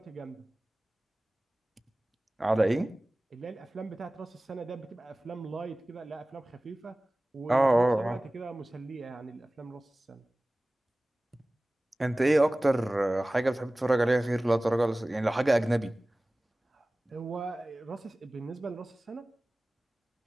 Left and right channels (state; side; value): normal; both; correlation 0.98